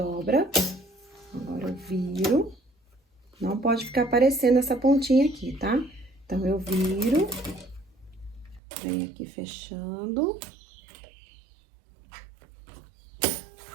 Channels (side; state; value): left; drops out; at 8.6 s